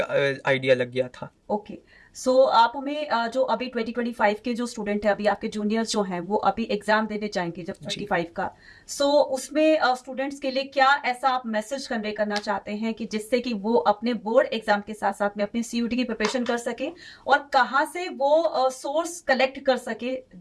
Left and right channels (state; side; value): identical; both; correlation 1.00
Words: आइडिया लग गया था। ओके। सो आप हमें जो अभी 2025 के जो स्टूडेंट है, अभी आपके जूनियर्स जो हैं वो अभी एग्जाम देने जाएंगे जब जी 25 का, सो उसमें स्टूडेंट्स के लिए क्या ऐसा आप मैसेज कन्वे करना चाहते हैं कि जिससे कि वो अपने बोर्ड एग्जाम के साथ साथ में अपनी सीयूटी की प्रिपरेशन कर सके, और कहाँ से वो सोर्स कलेक्ट कर सके